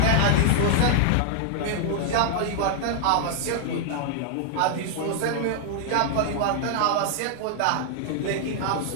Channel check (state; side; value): different; both; correlation -0.01